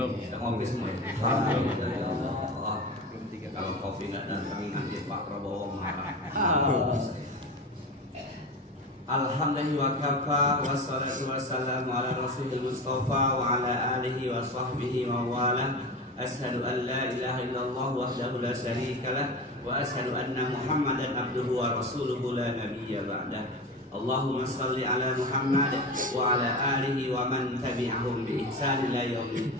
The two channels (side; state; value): both; normal; correlation 0.27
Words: Ngopi semua. Kalau kopi nggak datang nanti Pak Prabowo marah. Alhamdulillah wa kafa wassalatu wassalamu ala rasulil mustafa wa ala alihi wa sahbihi wa wala. Ashhadu an la ilaha illallah wahdahu la syarika lah wa ashhadu anna Muhammadan abduhu wa rasuluhu la nabiyya ba'dah. Allahumma salli ala Muhammad wa ala alihi wa man tabi'ahum bi ihsan ila